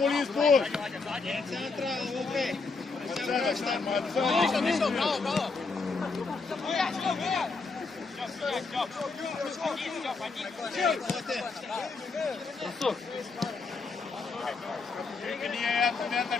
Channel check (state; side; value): quieter; right; 4.2 dB